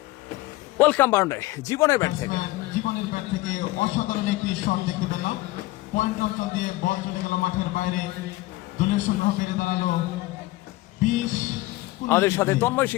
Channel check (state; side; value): quieter; right; 18.9 dB